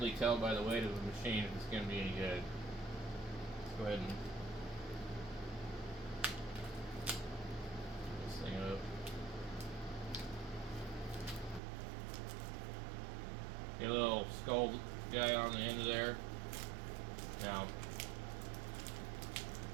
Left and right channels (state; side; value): drops out; left; at 11.6 s